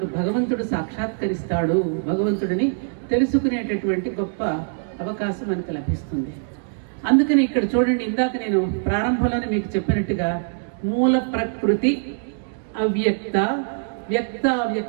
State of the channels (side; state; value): left; silent; digital silence